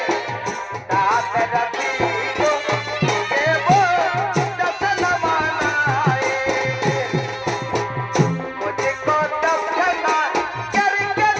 साथ रखे को के वो जसन मनाए मुझे को तब पता करके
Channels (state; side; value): identical; both; correlation 1.00